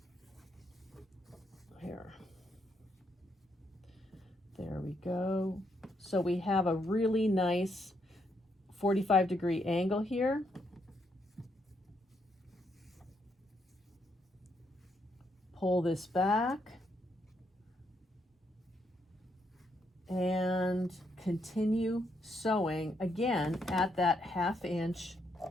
Here. There we go. So we have a really nice 45-degree angle here. Pull this back and continue sewing again at that 1/2 inch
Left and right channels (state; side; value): normal; both; correlation 0.77